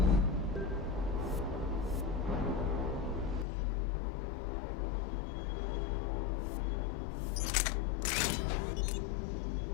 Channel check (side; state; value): right; drops out; at 3.5 s